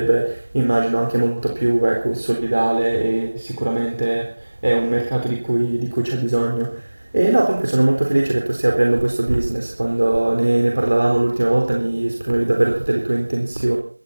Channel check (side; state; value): both; inverted; correlation -1.00